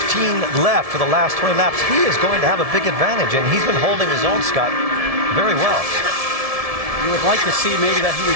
left for the last 20 laps, he is going to have a big advantage, and he's been holding his own, Scott, very well. You would like to see maybe that he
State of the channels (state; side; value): late; left; 1.7 ms